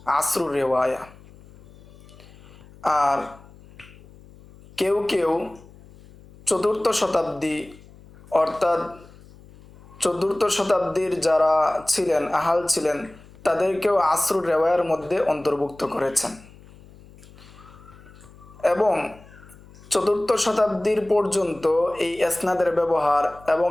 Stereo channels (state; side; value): noise; left; hum, 23 dB below the sound